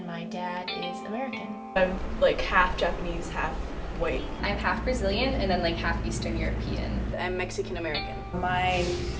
my dad is American. I'm like half Japanese, half white. I'm half Brazilian and then like half Eastern European. I'm Mexican American. My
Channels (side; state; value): both; identical; correlation 1.00